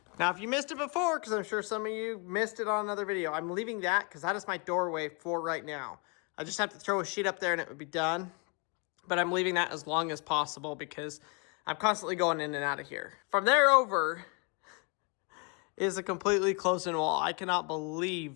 Now, if you missed it before, because I'm sure some of you missed it on another video, I'm leaving that because that is my doorway for right now. I just have to throw a sheet up there and it would be done. But I'm leaving that as long as possible because I'm constantly going in and out of here. From there over is a completely closed-in wall. I cannot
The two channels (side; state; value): right; quieter; 32.9 dB